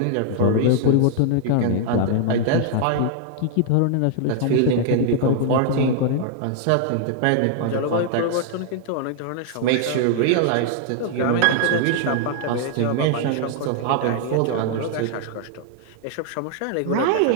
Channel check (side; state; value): both; different; correlation -0.01